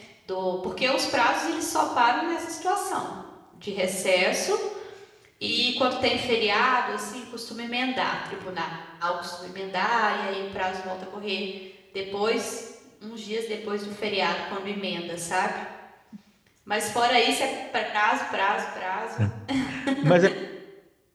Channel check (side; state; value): both; identical; correlation 1.00